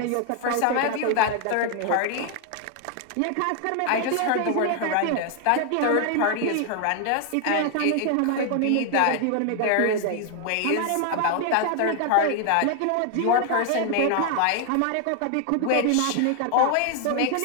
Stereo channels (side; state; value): both; different; correlation 0.00